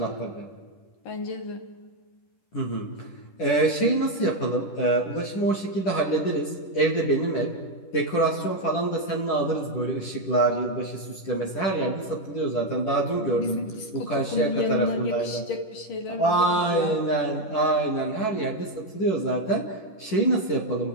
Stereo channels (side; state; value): right; late; 10 ms